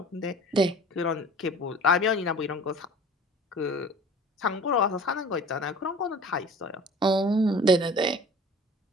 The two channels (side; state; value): both; normal; correlation 0.44